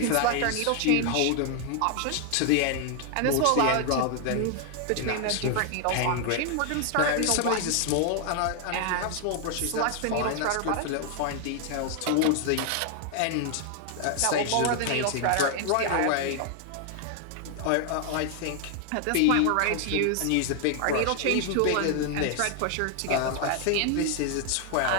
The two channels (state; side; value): different; both; correlation 0.00